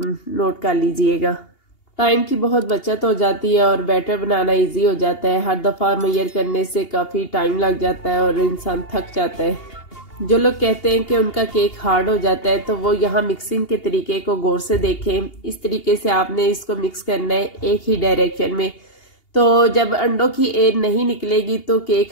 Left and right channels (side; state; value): right; late; 2.8 ms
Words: नोट कर लीजिएगा। टाइम की बहुत बचत हो जाती है और बैटर बनाना ईजी हो जाता है। हर दफ़ा मैयर करने से काफ़ी टाइम लग जाता है और इंसान थक जाता है। जो लोग कहते हैं कि उनका केक हार्ड हो जाता है तो वो यहाँ मिक्सिंग के तरीके को गौर से देखें। इस तरीके से आपने इसको मिक्स करना है एक ही डायरेक्शन में। तो जब अंडों की एयर नहीं निकलेगी तो केक